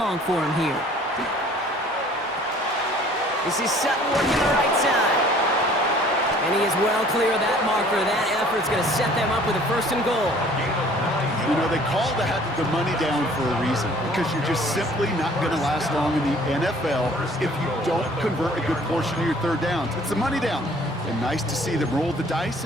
for him here. This is Sutton working the right side. And he is well clear of that marker. That effort's going to set them up with a 1st and goal. You know, they call the money down for a reason, because you're just simply not going to last long in the NFL if you don't convert a good portion of your 3rd downs. It's the money down. And nice to see them roll the dice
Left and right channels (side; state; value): both; normal; correlation 0.53